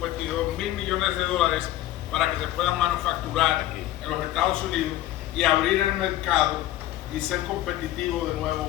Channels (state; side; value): quieter; right; 14.4 dB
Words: millones para que se puedan manufacturar en los Estados Unidos y abrir el mercado y ser competitivo de